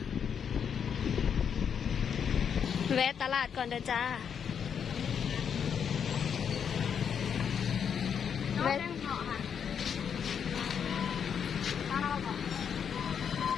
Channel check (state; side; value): quieter; right; 7.5 dB